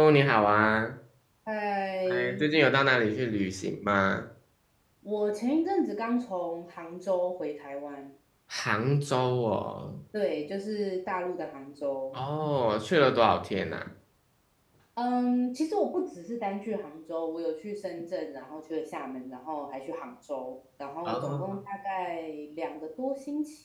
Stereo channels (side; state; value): both; identical; correlation 1.00